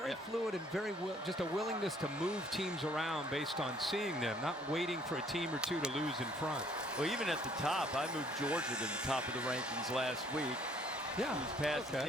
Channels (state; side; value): normal; both; correlation 0.61